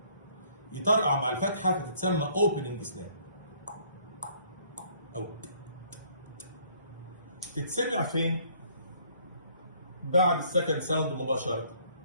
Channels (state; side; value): inverted; both; correlation -0.61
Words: يطرقع مع الفتحه فتتسمى اوبننج سناب. او تتسمع فين؟ بعد السكند ساوند مباشره